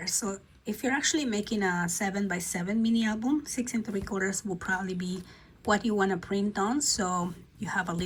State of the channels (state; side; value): identical; both; correlation 1.00